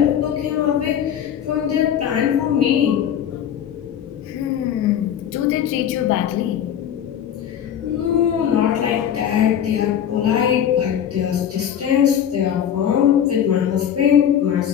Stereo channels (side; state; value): right; quieter; 9.5 dB